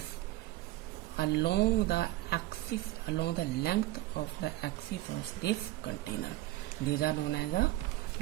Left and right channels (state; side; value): quieter; left; 16.8 dB